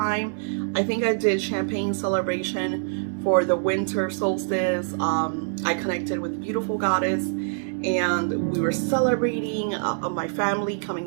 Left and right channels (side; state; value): left; silent; digital silence